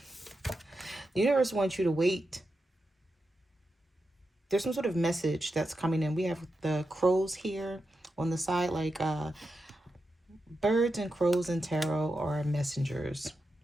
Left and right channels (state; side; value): normal; both; correlation 0.88